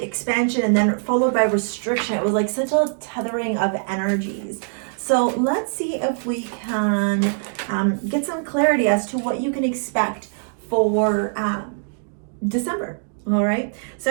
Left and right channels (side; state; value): left; silent; digital silence